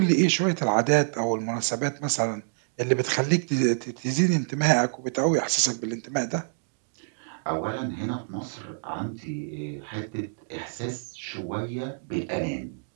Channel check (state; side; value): silent; left; digital silence